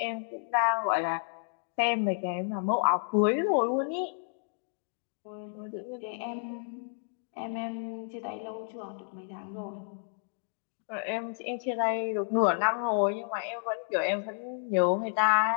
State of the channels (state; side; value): silent; right; digital silence